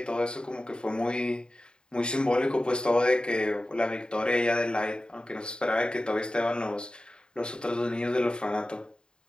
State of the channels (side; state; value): right; late; 0.049 ms